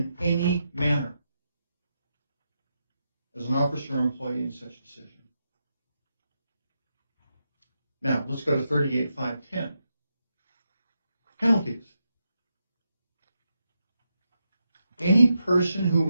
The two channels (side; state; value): both; inverted; correlation -0.85